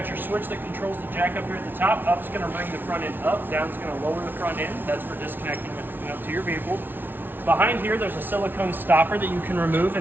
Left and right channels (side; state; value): left; late; 0.096 ms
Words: your switch that controls the jack up here at the top. Up's going to bring the front end up, down's going to lower the front end. That's for disconnecting and hooking up to your vehicle. Behind here, there's a silicone stopper that you can remove,